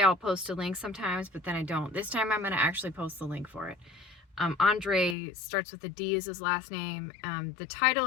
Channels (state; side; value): drops out; right; at 5.2 s